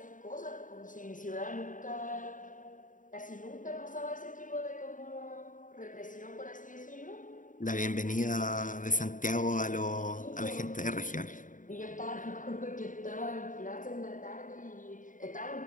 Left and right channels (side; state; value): right; late; 0.38 ms